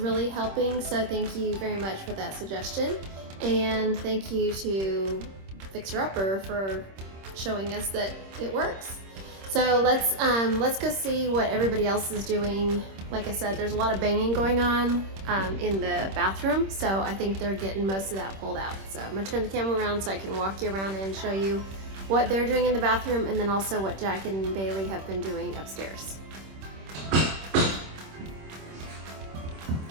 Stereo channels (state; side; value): late; left; 26 ms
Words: helping, so thank you very much for that suggestion. And thank you to Fixer Upper for showing us that it works. So let's go see what everybody else is doing. Like I said, there's a lot of banging going on in the bathroom, so I think they're getting most of that pulled out. So I'm gonna turn the camera around so I can walk you around and show you what they're doing in the bathroom, and then also what Jack and Bailey have been doing upstairs. All